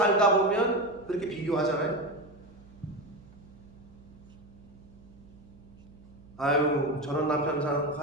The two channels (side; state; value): right; noise; hum, 23 dB below the sound